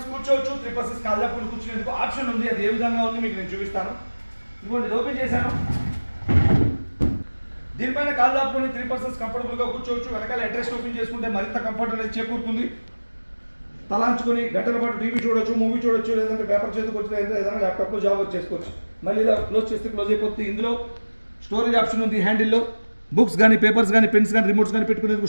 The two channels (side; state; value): both; inverted; correlation -1.00